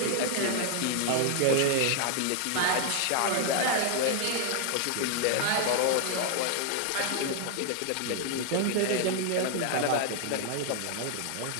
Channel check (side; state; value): both; different; correlation 0.00